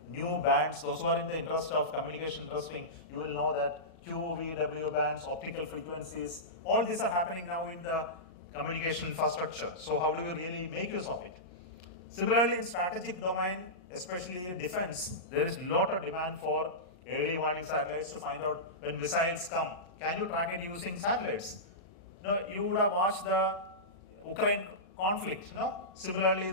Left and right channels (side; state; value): right; late; 38 ms